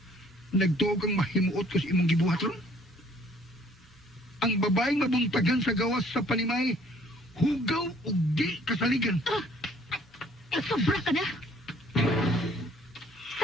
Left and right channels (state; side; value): normal; both; correlation 0.58